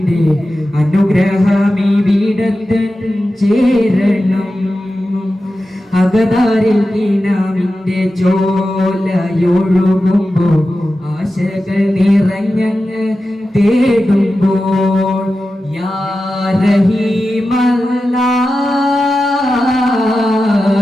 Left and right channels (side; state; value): both; normal; correlation 0.93